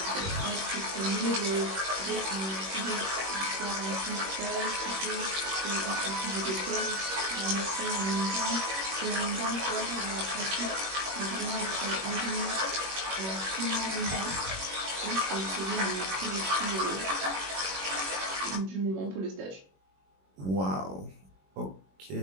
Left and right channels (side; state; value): left; late; 21 ms